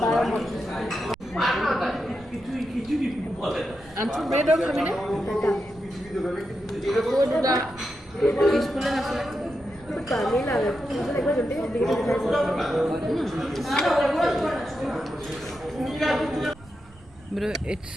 আনছো ব্রেড আর খাবি না ওটা পিসফুল না আসলে কালি লাগে মুঝে একবার জলদি দিকে দিখাই. Bro, it's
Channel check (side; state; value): right; noise; rumble, 23 dB below the sound